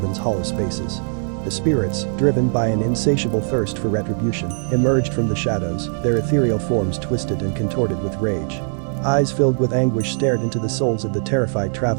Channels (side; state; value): left; silent; digital silence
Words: hollow spaces. The spirits, driven by an insatiable thirst for retribution, emerged from the shadows, their ethereal forms twisted and contorted with rage. Eyes filled with anguish stared into the souls of the terrified